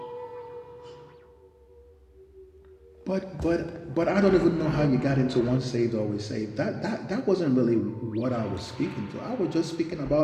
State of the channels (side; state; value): both; identical; correlation 1.00